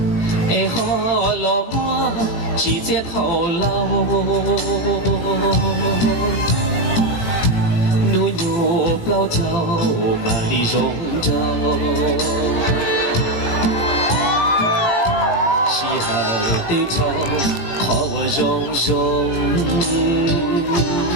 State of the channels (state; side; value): late; right; 18 ms